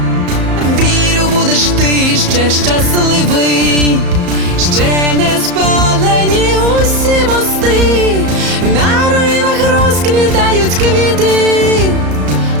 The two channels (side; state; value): left; late; 34 ms